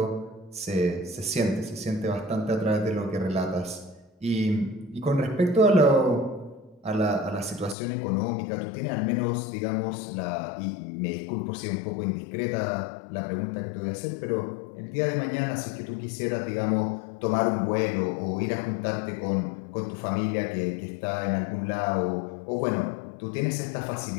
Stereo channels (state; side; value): drops out; right; at 7.8 s